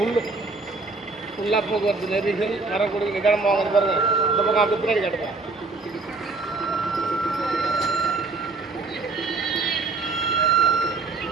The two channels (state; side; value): quieter; left; 3.8 dB